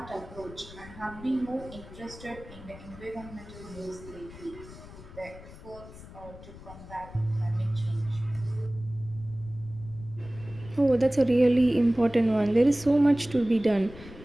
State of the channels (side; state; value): left; noise; rumble, 17 dB below the sound